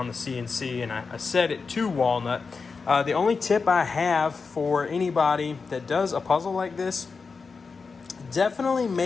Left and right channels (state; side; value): quieter; right; 4.8 dB